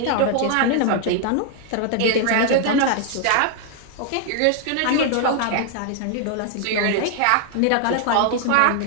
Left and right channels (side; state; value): both; different; correlation 0.00